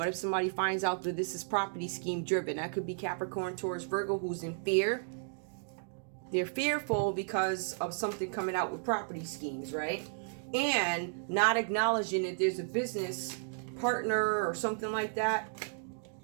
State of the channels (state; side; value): silent; left; digital silence